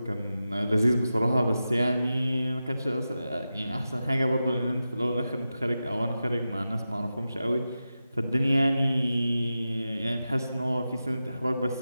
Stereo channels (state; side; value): inverted; both; correlation -0.92